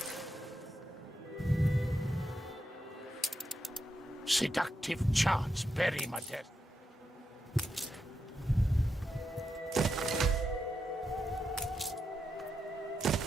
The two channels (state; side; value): normal; both; correlation 0.85